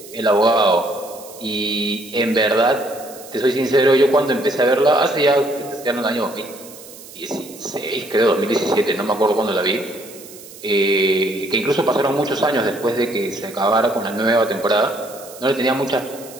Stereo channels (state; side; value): noise; right; hiss, 18 dB below the sound